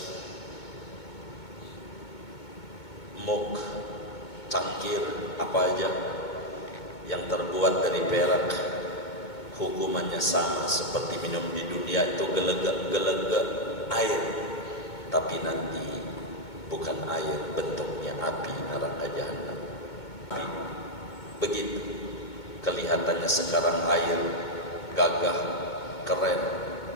mug, cangkir, apa aja yang terbuat dari perak, hukumannya sama seperti minum di dunia itu gelegak air, tapi nanti bukan air, bentuknya api neraka jahanam. Begitu kelihatannya sekarang air gagah, keren,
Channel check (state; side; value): late; right; 2.2 ms